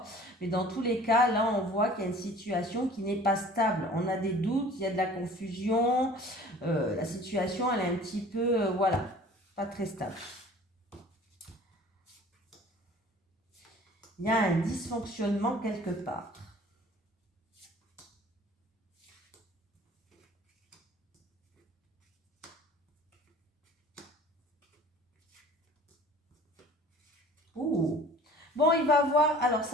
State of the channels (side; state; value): both; normal; correlation 0.47